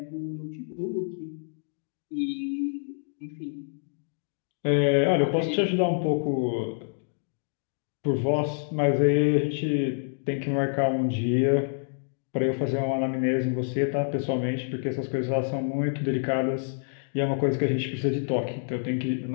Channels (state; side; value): silent; right; digital silence